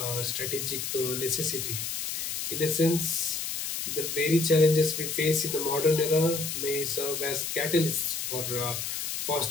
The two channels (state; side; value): noise; left; hiss, 3 dB below the sound